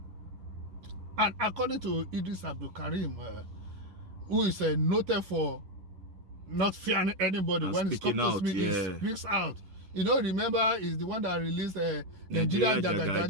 And according to Idris Abdulkarim, who is noted for not fearing anybody, when it comes to speak, he speaks out. You know, remember, is the one that released Nigeria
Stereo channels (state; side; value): late; left; 11 ms